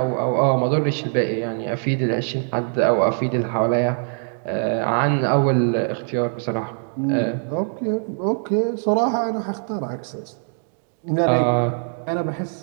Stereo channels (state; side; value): silent; left; 55 dB below the other